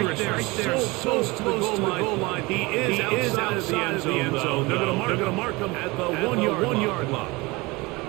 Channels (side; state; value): left; quieter; 23.5 dB